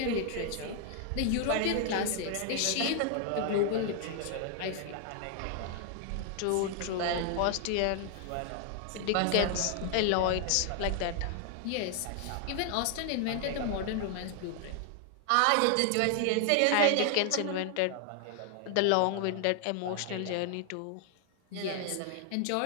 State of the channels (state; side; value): different; both; correlation 0.00